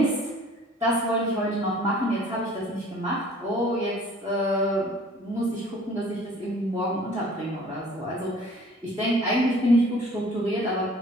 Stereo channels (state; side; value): normal; both; correlation 0.51